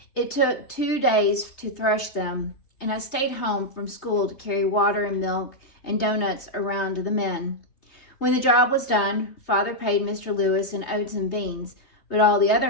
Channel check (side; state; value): right; late; 3.2 ms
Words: It took 2 days to thresh them, and I stayed home from school to carry water and milk and donuts around to the men. When the job was done, Father paid Mr. Lewis in oats and beans, but all the